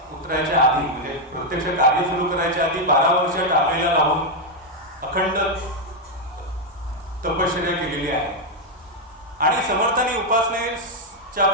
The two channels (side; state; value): both; normal; correlation 0.01